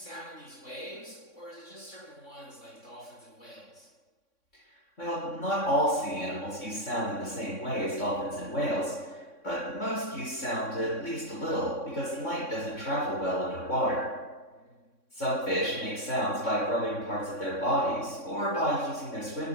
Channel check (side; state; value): right; late; 3.6 ms